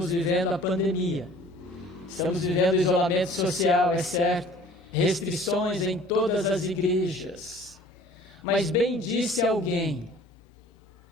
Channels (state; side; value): normal; both; correlation 0.50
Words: vivendo a pandemia, estamos vivendo isolamento social, é certo, restrições em todas as igrejas. Mas bem disse alguém: